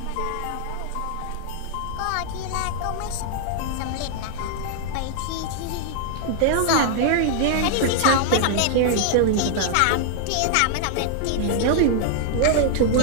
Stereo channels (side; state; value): both; different; correlation -0.01